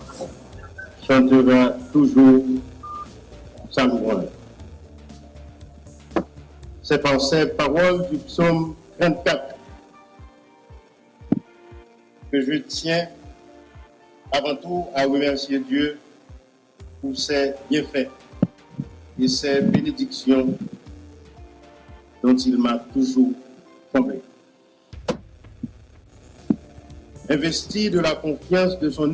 chantera toujours sa louange. C'est par ces paroles du psaume 34 que je tiens avant tout à remercier Dieu pour ses bienfaits et ses bénédictions dont il m'a toujours comblé. Investi de la confiance de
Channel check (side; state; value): both; identical; correlation 1.00